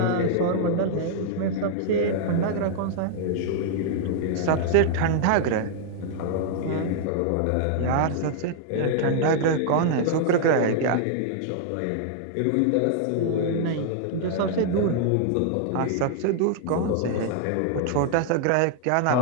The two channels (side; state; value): both; different; correlation -0.01